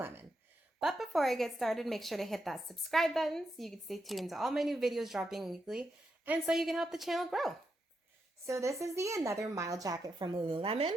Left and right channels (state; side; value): normal; both; correlation 0.84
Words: But before I get started, make sure to hit that subscribe button so you can stay tuned to all my new videos dropping weekly and so you can help the channel grow. So this is the Another Mile jacket from Lululemon.